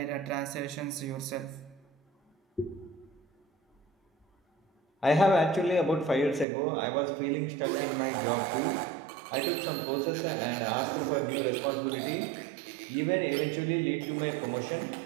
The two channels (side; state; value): left; drops out; at 6.5 s